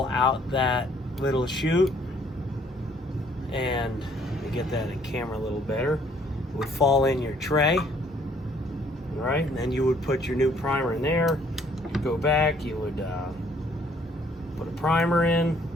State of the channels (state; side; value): normal; both; correlation 0.62